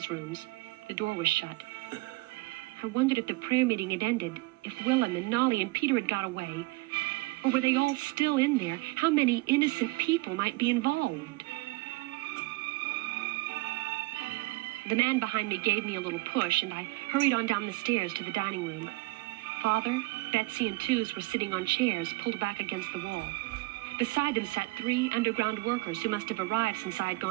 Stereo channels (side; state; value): left; quieter; 22.8 dB